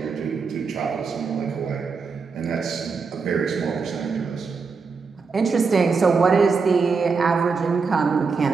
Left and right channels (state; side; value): quieter; left; 5.0 dB